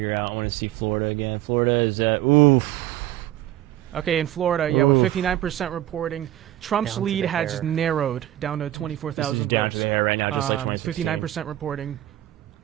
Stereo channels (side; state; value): left; quieter; 13.8 dB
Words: out. I want to see Florida again. Florida is at Okay, in Florida, with 59% reporting, Trump's lead has narrowed down to 24,000 votes. Down to the hair right now, just like 2016. 59% reporting.